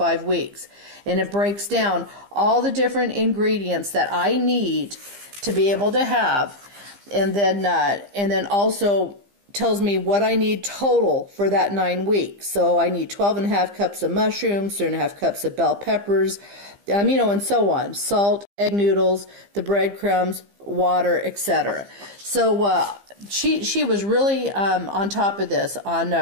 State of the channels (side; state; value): left; late; 15 ms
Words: weeks. And it breaks down all the different ingredients that I need to be able to have. And then also tells me what I need total for that 9 weeks. So I need 12.5 cups of mushrooms, 3.5 cups of bell peppers, and so on. Salt, egg noodles, the breadcrumbs, water, etc. So she was really on top of this.